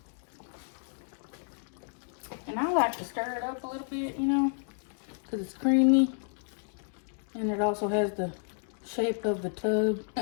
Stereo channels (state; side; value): silent; right; 57 dB below the other